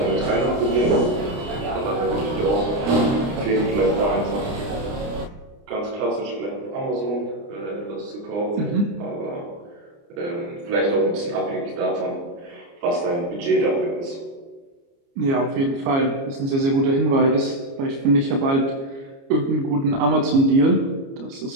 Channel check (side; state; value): left; late; 29 ms